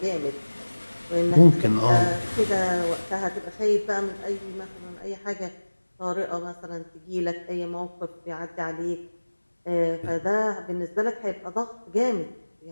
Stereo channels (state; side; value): inverted; both; correlation -1.00